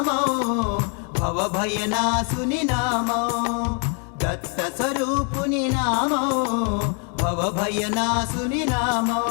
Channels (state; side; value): quieter; right; 39.9 dB